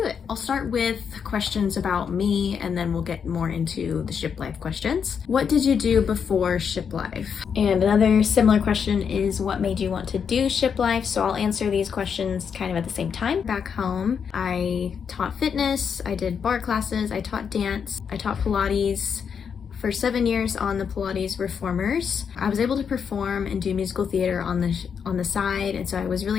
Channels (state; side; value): quieter; right; 6.9 dB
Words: it. I'll start with questions about me and then we'll get more into the ship life questions. What did you do before ship life? And another similar question is what made you want to do ship life? So I'll answer these questions kind of at the same time. Back home, I taught fitness, I did bar classes, I taught dance, I taught Pilates. For 7 years on the Pilates Reformers, I was able to perform and do musical theater on the side, and so I was